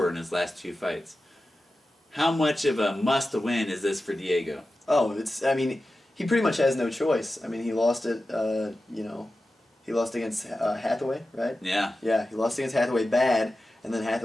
in his last 2 fights. How much of a must-win is this for Diego? Oh, I mean, he pretty much has no choice. I mean, he lost it, you know, he lost against Hathaway, right? Yeah. Yeah, he lost against Hathaway bad, and then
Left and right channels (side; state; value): both; normal; correlation 0.93